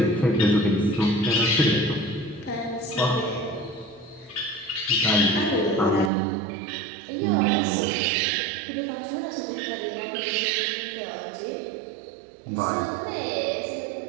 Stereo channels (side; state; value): left; drops out; at 6.1 s